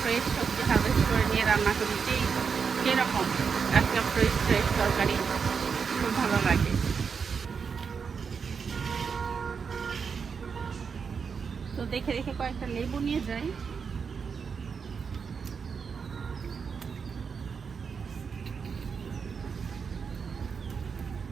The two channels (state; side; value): quieter; left; 6.0 dB